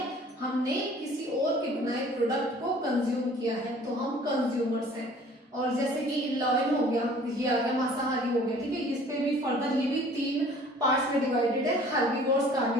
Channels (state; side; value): normal; both; correlation 0.51